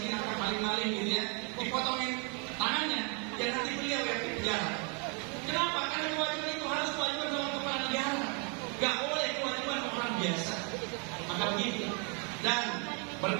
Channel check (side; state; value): left; quieter; 35.8 dB